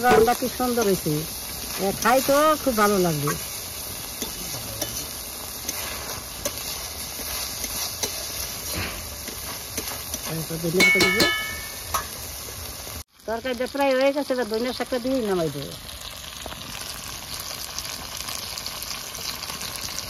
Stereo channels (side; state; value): both; identical; correlation 1.00